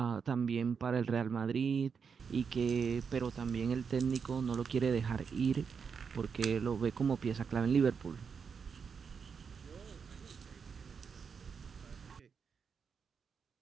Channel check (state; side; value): quieter; left; 6.1 dB